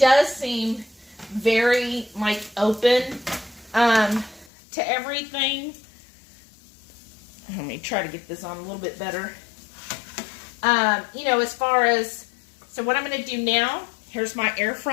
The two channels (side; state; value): right; drops out; at 4.5 s